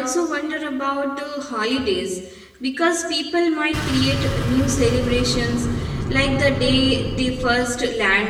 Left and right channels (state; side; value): identical; both; correlation 1.00